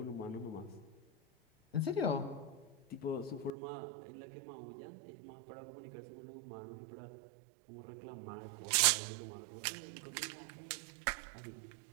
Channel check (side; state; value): left; drops out; at 3.5 s